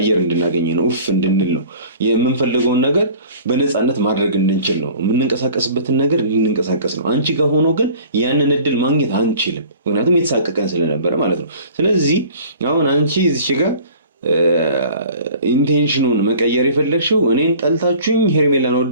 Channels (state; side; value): inverted; both; correlation -0.47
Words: እንድናገኝ ነው፣ ኡፍ እንድንል ነው። የምንፈልገውን ነገር በነፃነት ማድረግ እንድንችል ነው፣ የምንንቀሳቀስበትን ነገር እንድንንቀሳቀስ ነው። አንቺ ጋር ሆኖ ግን ያንን እድል ማግኘት አንችልም፣ ምክንያቱም የተሳቀቀን ስለነበረ ማለት ነው። ስለዚህ አሁን አንቺ እዚች ጋር ኢንቴንሽኑን መቀየር የፈለግሽው እኔን ጠልታችሁኝ ሄርሜላን